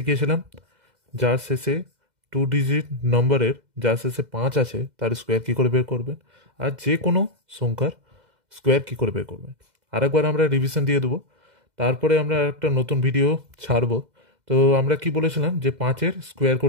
যার শেষে 2 ডিজিট নম্বরের যার শেষে 5 আছে তার স্কোয়ার কী করে বের করবেন, আর যে কোনো সংখ্যার স্কোয়ার কী করে বের করবেন। আরেকবার আমরা রিভিশন দিয়ে দেবো, তারপরে আমরা একটা নতুন ভিডিও ছাড়বো। তো আমরা কি বলেছিলাম যে 5-এর স্কোয়ার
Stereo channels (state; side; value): late; left; 2.0 ms